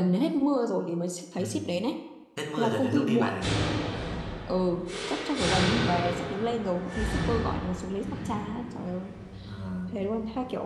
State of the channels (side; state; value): both; identical; correlation 1.00